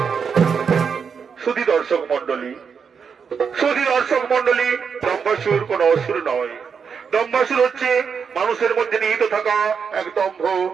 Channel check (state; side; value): quieter; left; 6.3 dB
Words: সুধী দর্শক মন্ডলী, দম্বাসুর কোন অসুর নয়। দম্বাসুর হচ্ছে মানুষের মধ্যে নিহিত থাকা এক দম্ভ,